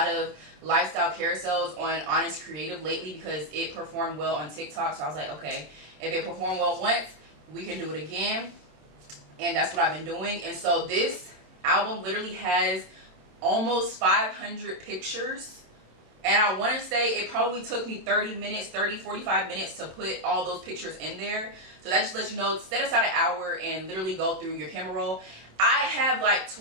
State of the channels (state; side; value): late; left; 26 ms